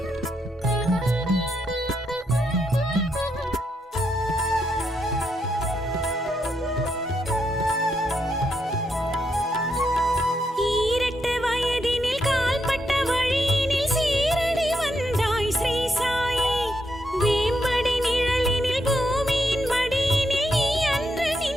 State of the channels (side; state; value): both; normal; correlation 0.80